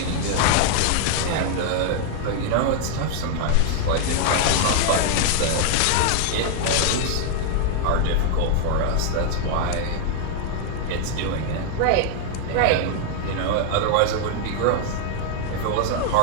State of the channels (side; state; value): both; different; correlation 0.00